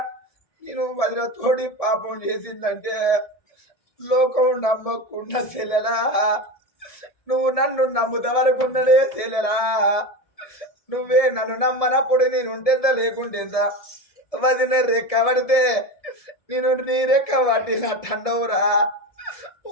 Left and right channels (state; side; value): late; right; 1.7 ms